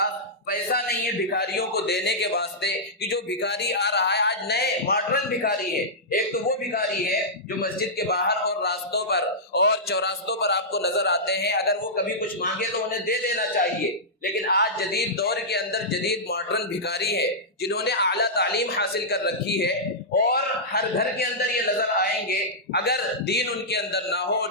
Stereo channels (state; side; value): normal; both; correlation -0.13